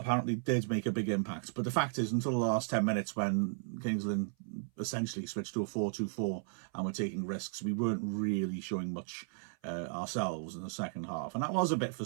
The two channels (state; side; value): silent; left; 54 dB below the other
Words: did make a big impact. But the fact is, until the last 10 minutes when Kings Lynn essentially switched to a 4-2-4 and were taking risks, we weren't really showing much ourselves in the second half. And that was a bit